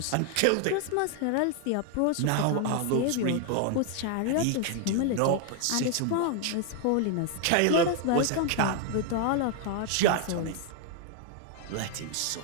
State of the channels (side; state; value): both; different; correlation 0.00